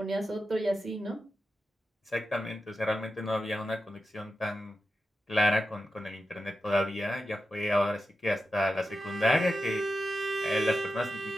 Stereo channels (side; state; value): both; normal; correlation 0.90